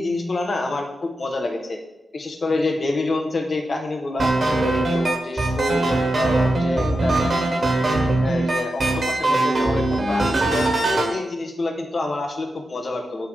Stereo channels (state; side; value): normal; both; correlation 0.89